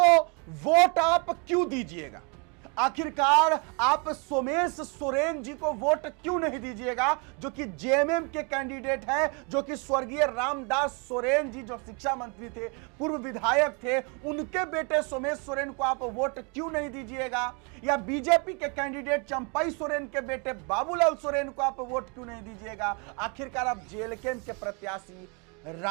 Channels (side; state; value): left; quieter; 33.8 dB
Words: वोट आप क्यों दीजिएगा? आखिरकार आप सोमेश सोरेन जी को वोट क्यों नहीं दीजिएगा, जो कि जेएमएम के कैंडिडेट है, जो कि स्वर्गीय रामदास सोरेन जी जो शिक्षा मंत्री थे, पूर्व विधायक थे, उनके बेटे सोमेश सोरेन को आप वोट क्यों नहीं दीजिएगा? या बीजेपी के कैंडिडेट चंपई सोरेन के बेटे बाबूलाल सोरेन को आप वोट क्यों नहीं दीजिएगा? आखिरकार आप जेएलकेएम के प्रत्याशी